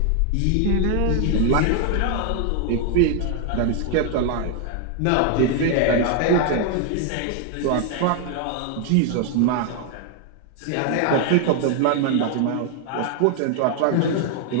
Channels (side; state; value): both; different; correlation 0.00